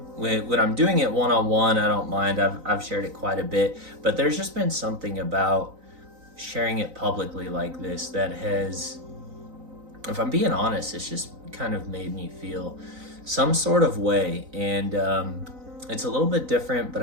When I'm doing it one on one, I don't mind. I've shared it quite a bit, but there's just been something about sharing it publicly like this that has, if I'm being honest, it's just kind of made me feel some sort of way. And it's a little bit different, but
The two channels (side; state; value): left; late; 3.9 ms